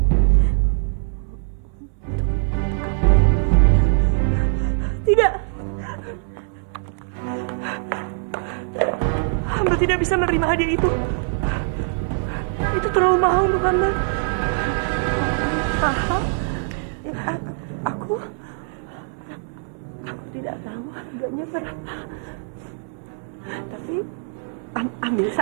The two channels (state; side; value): silent; left; 60 dB below the other